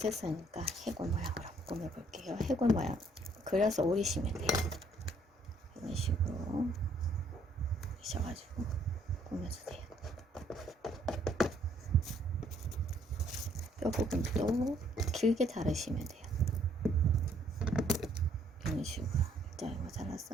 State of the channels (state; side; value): normal; both; correlation 0.66